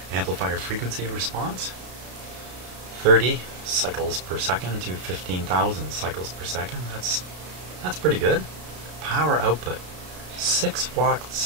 amplifier frequency response. 30 cycles per second to 15,000 cycles per second. That's pretty good. Power output, 6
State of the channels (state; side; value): late; left; 33 ms